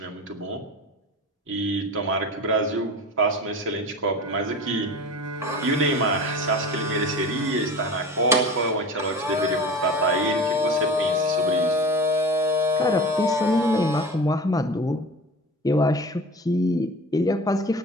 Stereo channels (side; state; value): both; normal; correlation 0.35